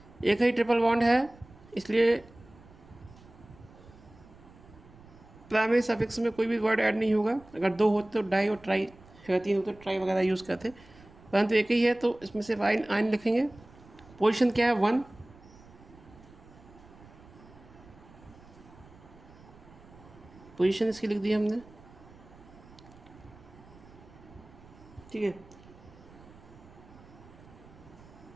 एक ही ट्रिपल बॉन्ड है इसलिए प्राइमरी सफिक्स में कोई भी वर्ड ऐड नहीं होगा। अगर 2 होते तो डाई और ट्राई, अगर 3 होते तो ट्राई वगैरह यूज़ करते, परंतु एक ही है तो इसमें सिर्फ आयन लिखेंगे। पोजीशन क्या है? 1। पोजीशन इसकी लिख दी हमने। ठीक है,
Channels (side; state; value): right; noise; rumble, 23 dB below the sound